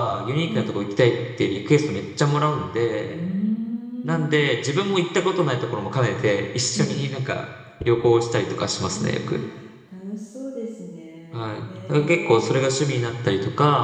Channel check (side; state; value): both; identical; correlation 1.00